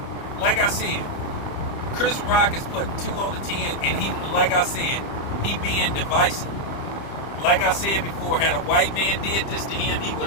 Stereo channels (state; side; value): late; right; 30 ms